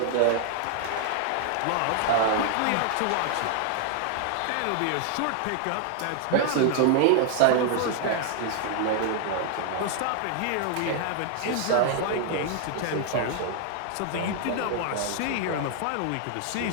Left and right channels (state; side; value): different; both; correlation 0.00